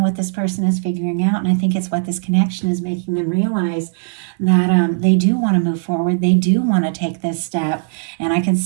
what this person is figuring out, and I think it's what this connection is making them realize, that they do want to move forward, they do want to take this step, and I can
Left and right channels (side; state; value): left; silent; 61 dB below the other